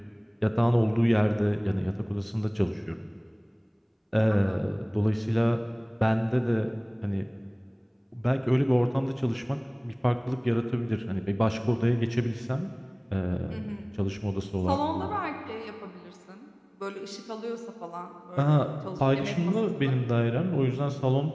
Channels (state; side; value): identical; both; correlation 1.00